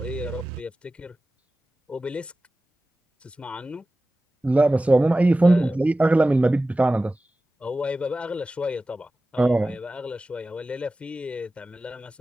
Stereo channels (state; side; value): normal; both; correlation 0.96